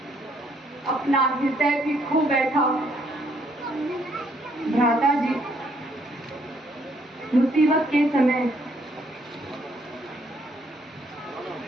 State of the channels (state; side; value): normal; both; correlation 0.68